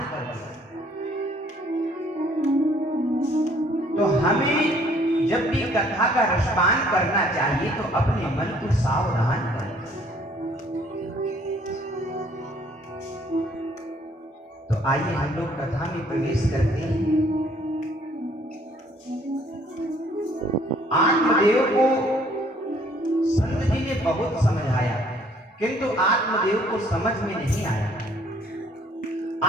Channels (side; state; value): both; normal; correlation 0.60